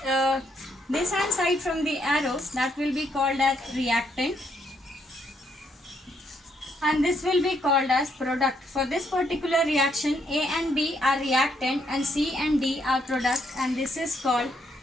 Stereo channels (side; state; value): both; normal; correlation 0.74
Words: this hand side from the arrows, that will be called as reactant, and this will be called as product. For this particular reaction, A and B are reactant and C and D are product, and this is called